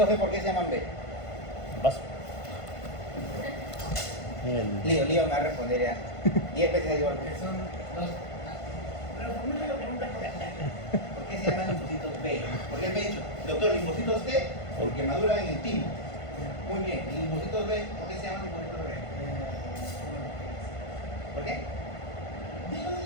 B por qué se llaman B? En vaso. En el... Lío me va a responder ya. 10 veces igual. Que son dos. Pero formula la pregunta. ¿Por qué se llaman linfocitos B? Porque él me ha dicho, doctor, linfocitos T, porque maduran en el timo. Muy bien. ¿Y linfocitos B? ¿Por qué se llaman linfocitos B? ¿Por qué?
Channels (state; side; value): late; right; 1.5 ms